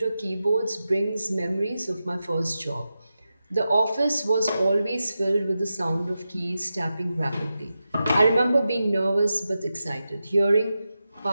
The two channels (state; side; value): inverted; both; correlation -0.91